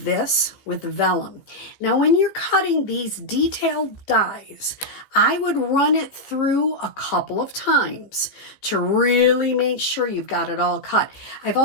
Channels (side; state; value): right; late; 15 ms